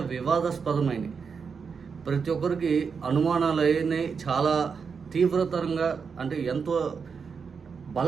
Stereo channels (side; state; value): left; quieter; 5.8 dB